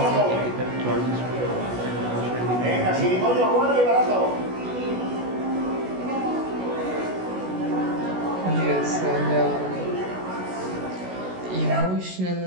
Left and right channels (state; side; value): late; left; 16 ms